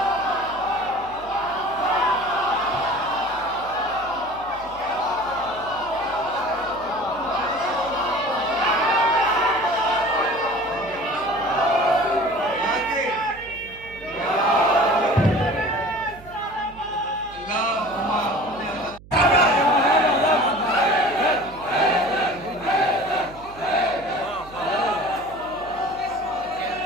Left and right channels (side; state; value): right; noise; hum, 20 dB below the sound